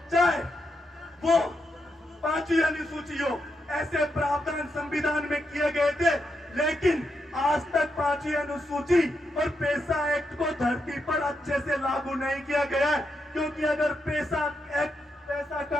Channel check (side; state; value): both; normal; correlation 0.83